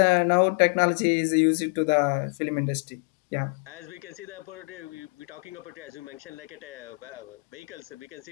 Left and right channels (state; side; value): quieter; right; 34.4 dB